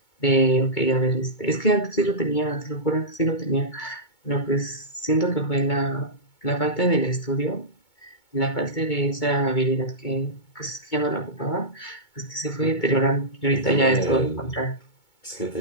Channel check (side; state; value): right; late; 2.2 ms